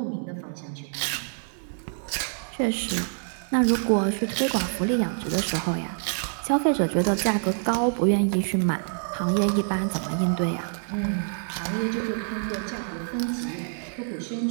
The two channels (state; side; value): silent; left; digital silence